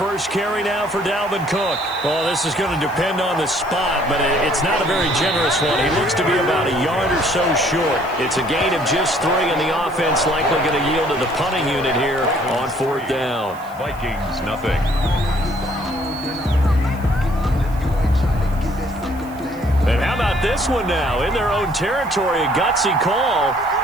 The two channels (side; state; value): right; noise; hiss, 23 dB below the sound